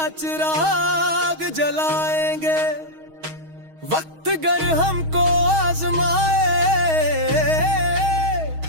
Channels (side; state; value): left; late; 6.3 ms